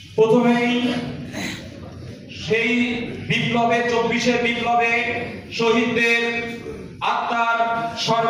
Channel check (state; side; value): identical; both; correlation 1.00